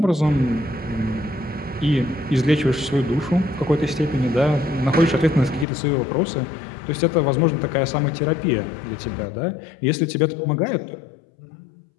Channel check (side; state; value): right; drops out; at 5.7 s